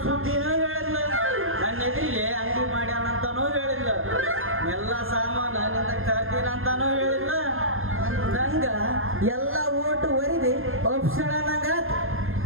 ಸುದ್ದಿನೂ ಹೇಳಿಲ್ಲ, ನನ್ನ ಎದುರಿಗೆ ಅಂಗಡಿ ಮಾಡ್ಯಾನಂತಾನೂ ಹೇಳಿಲ್ಲ, ಎಲ್ಲ ಸಾಮಾನು ನಿಂದ ತರ್ತೀನಿ ಅಂತಾನೂ ಹೇಳಿಲ್ಲ. ಅಂದಂಗ ಎಲ್ಲ ಓಟು ಒರಿದಿ ಒಪ್ಸಳ ನಂಗ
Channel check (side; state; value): left; late; 0.60 ms